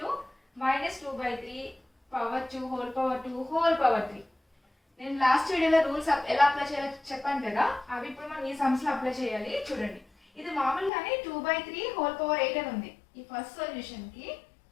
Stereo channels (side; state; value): right; drops out; at 10.9 s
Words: -2/3 power 2 whole power 2 whole power 3. నేను లాస్ట్ వీడియోలో రూల్స్ ఎలా అప్లై చేయాలో చెప్పాను కదా, అవి ఇప్పుడు మనం ఈ సమ్స్ లో అప్లై చేయాలి. చూడండి, ఇది మామూలుగానే 2/3 హోల్ పవర్ 8 అని ఉంది. ఈ ఫస్ట్ సొల్యూషన్ కి